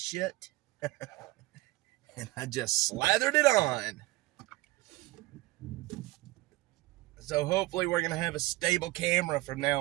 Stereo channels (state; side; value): quieter; left; 19.8 dB